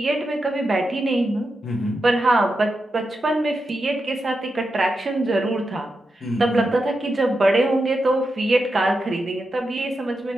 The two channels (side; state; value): both; normal; correlation 0.88